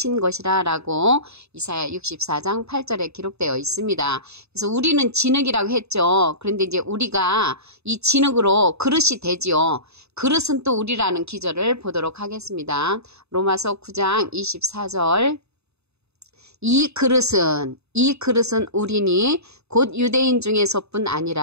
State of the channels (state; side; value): late; left; 0.80 ms